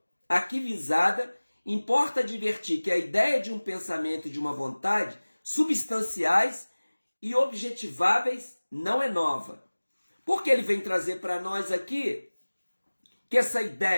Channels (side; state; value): both; inverted; correlation -1.00